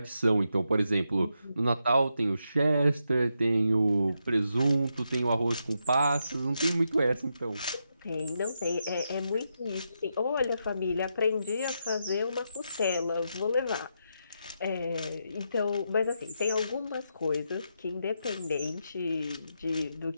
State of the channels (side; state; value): both; inverted; correlation -0.83